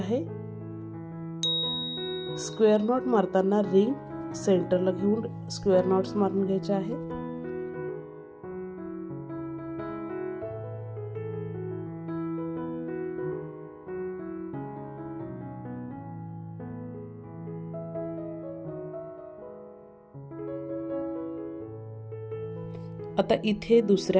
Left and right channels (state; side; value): identical; both; correlation 1.00